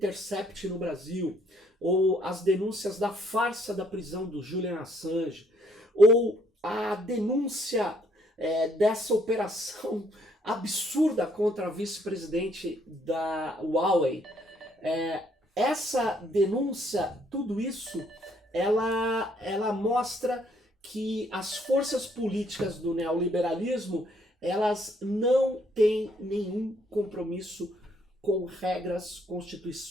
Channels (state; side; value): normal; both; correlation 0.67